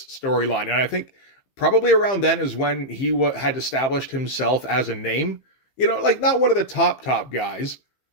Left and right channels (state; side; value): late; right; 15 ms